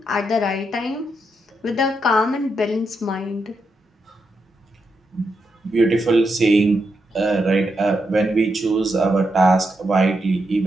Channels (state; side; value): normal; both; correlation 0.83